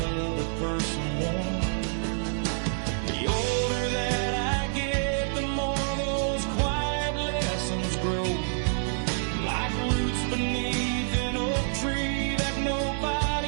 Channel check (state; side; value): silent; left; digital silence